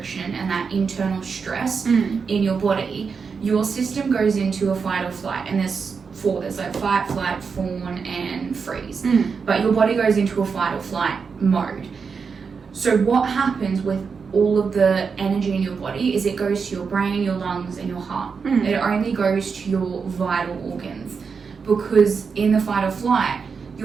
and that internal stress in your body. Your system goes into a fight or flight, and there's like fight, flight, fawn, and freeze. But your body goes into a fight or flight mode. So what happens with all of the energy in your body is it goes to your brain, your lungs, and your heart. It only goes to your vital organs, because in the fight or flight,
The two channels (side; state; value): left; quieter; 5.6 dB